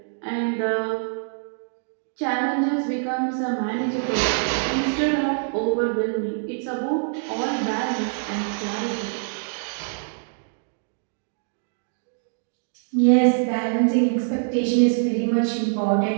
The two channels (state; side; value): silent; left; digital silence